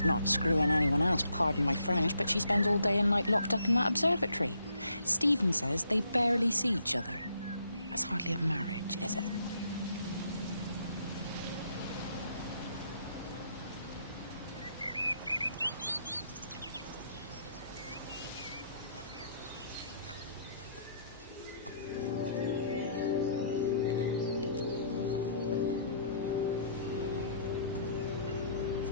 not screwing anyone else, pardon my French, but she spends all day and night locked up in that observatory. Stephen says they barely see each other. That's hardly a marriage, is it?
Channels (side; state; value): both; inverted; correlation -0.68